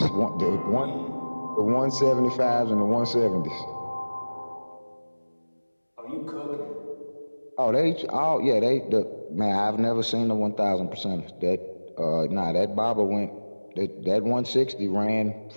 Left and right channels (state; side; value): inverted; both; correlation -1.00